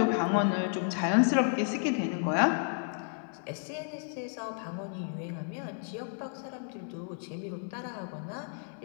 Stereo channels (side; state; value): right; silent; 56 dB below the other